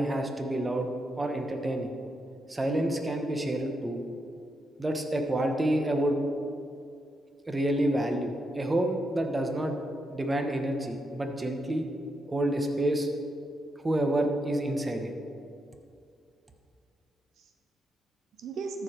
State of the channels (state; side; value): normal; both; correlation 0.82